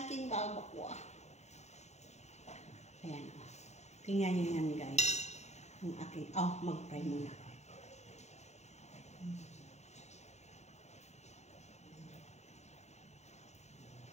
balbacoa. Ayan. Tingnan nyo yan guys. Ang aking... Oh, mag-fry muna.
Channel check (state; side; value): late; right; 0.32 ms